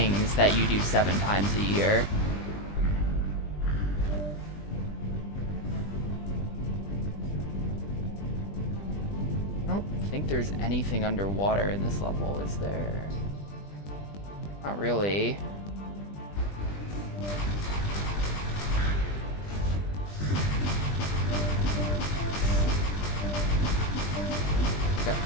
that you do 7 times a year. I don't think there's anything underwater in this level, is there? Not really.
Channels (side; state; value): right; late; 20 ms